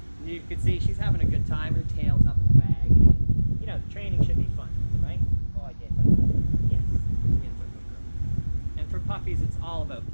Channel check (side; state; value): both; inverted; correlation -1.00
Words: You can see she's having a good time. Her tail's up and wagging. You know, the training should be fun, right? Oh, I did. Yes. And for puppies, it's all about